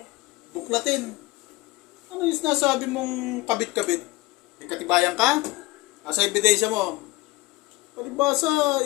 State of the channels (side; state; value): right; quieter; 20.8 dB